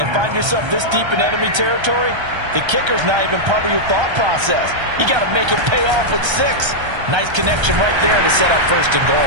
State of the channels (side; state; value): left; late; 1.3 ms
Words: find yourself this deep in enemy territory, the kicker's not even part of your thought process. You got to make it pay off with 6. Nice connection right there to set up 1st and